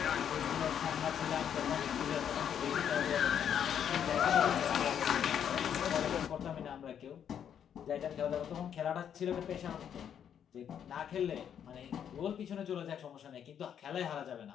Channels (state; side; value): quieter; right; 8.8 dB